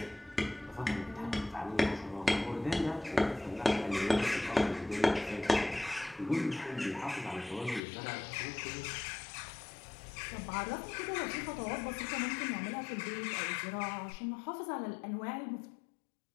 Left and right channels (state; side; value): drops out; right; at 7.8 s